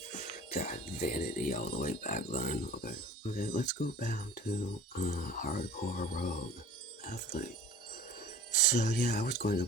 God, vanity all the way back then. Okay, let's go back to hardcore rogue athlete. So yeah, I was going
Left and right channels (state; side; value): normal; both; correlation 0.44